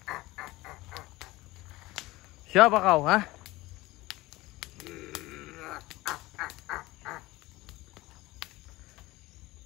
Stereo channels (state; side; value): quieter; right; 19.5 dB